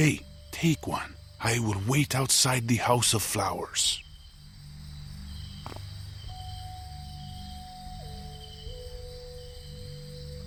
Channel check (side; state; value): both; identical; correlation 1.00